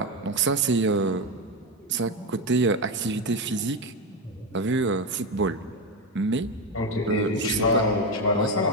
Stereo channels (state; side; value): normal; both; correlation 0.13